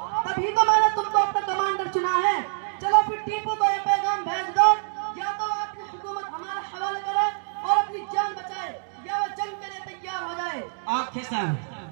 तभी तो मैंने तुमको अपना कमांडर चुना है। चलो फिर टीपू को ये पैगाम भेज दो, या तो अपनी हुकूमत हमारे हवाले करे और अपनी जान बचाए, या वो जंग के लिए तैयार हो जाए। Okay sir.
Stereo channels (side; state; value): left; silent; digital silence